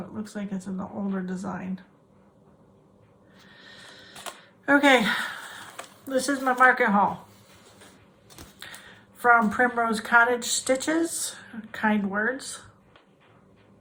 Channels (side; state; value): both; identical; correlation 1.00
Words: looks like it's an older design. Okay, this is my market haul. From Primrose Cottage Stitches, Kind Words.